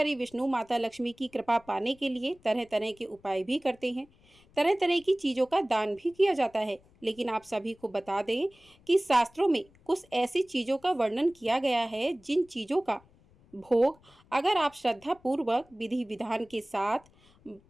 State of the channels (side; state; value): left; noise; rumble, 29 dB below the sound